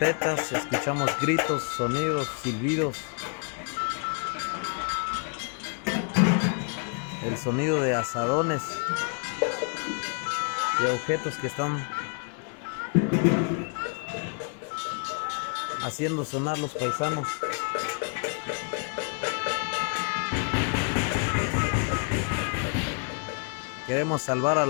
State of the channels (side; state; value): right; quieter; 39.8 dB